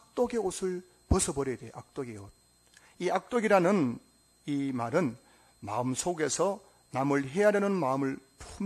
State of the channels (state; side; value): identical; both; correlation 1.00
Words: 옷을 벗어버려야 돼요. 악독의 옷. 이 악독이라는 이 말은 마음속에서 남을 해하려는 마음을